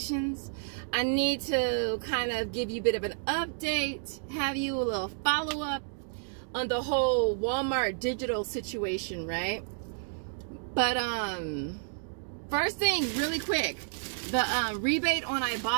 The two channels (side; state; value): left; silent; digital silence